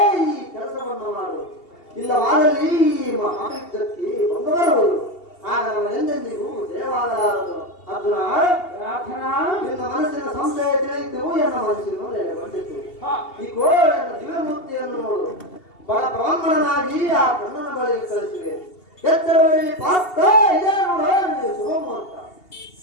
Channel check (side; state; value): right; late; 2.8 ms